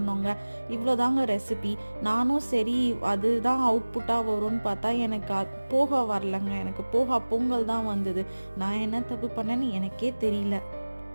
இவ்வளோதாங்க ரெசிபி. நானும் சரி அதுதான் அவுட்புட்டாக வரும்னு பார்த்தா எனக்கு போகா வரலங்க. எனக்கு போகா பொங்கல் தான் வந்தது. நான் என்ன தப்பு பண்ணேன்னு எனக்கே தெரியல.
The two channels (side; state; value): both; inverted; correlation -1.00